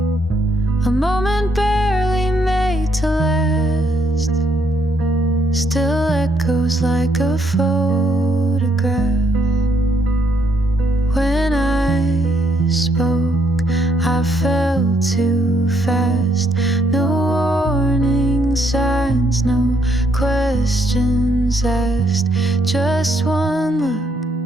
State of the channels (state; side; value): normal; both; correlation 0.72